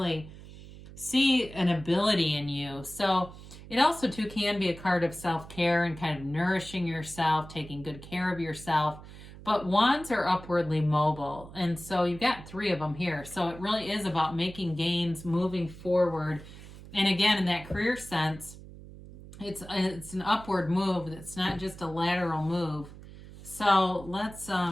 see an ability in you. So it also, too, can be a card of self-care and kind of nourishing yourself, taking good care of yourself. But wands are upwardly mobile. And so you've got 3 of them here. So it really is about making gains, moving forward. And again, in that career sense, it's an upward move. It's not just a lateral move. So let's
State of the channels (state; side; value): noise; right; hum, 16 dB below the sound